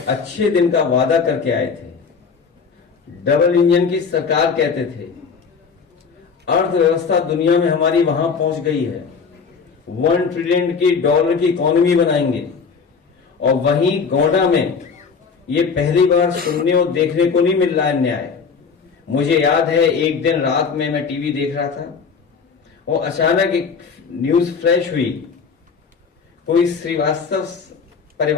अच्छे दिन का वादा करके आए थे, डबल इंजन की सरकार कहते थे, अर्थव्यवस्था दुनिया में हमारी वहां पहुंच गई है, $1 ट्रिलियन की डॉलर की इकोनॉमी बनाएंगे। और वहीं गोंडा में ये पहली बार सुनने और देखने को नहीं मिल रहा है न्याय। मुझे याद है एक दिन रात में मैं टीवी देख रहा था और अचानक एक न्यूज फ्लैश हुई। कोई श्रीवास्तव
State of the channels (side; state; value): right; quieter; 5.6 dB